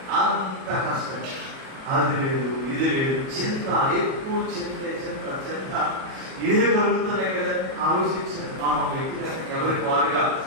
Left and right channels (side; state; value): left; late; 37 ms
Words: అంత కష్టం. అది లేదు, ఇది లేదు, చింత, ఎక్కువ చింత చింత చింత ఇదే కలుగుతున్నాయి కదా. ఆలోచించారు మనం వ్యక్తిగా ఎవరికి వారుగా